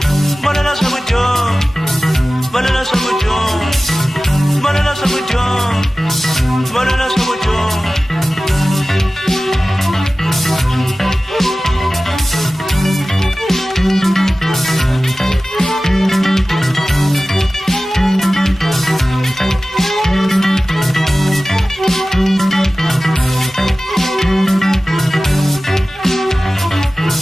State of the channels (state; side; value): normal; both; correlation 0.96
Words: valela swakudya valela swakudya valela swakudya valela swakudya